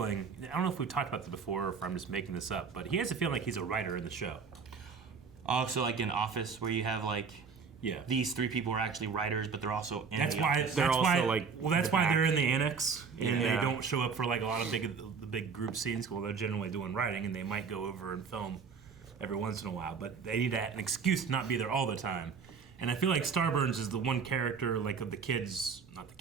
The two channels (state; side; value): quieter; left; 5.7 dB